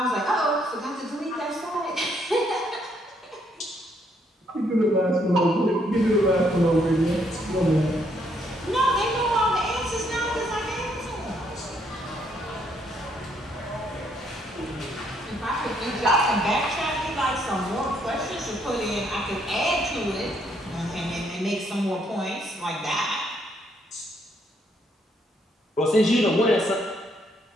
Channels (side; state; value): both; normal; correlation 0.71